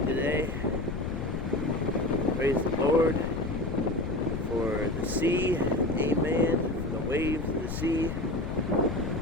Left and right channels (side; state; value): left; noise; rumble, 5 dB below the sound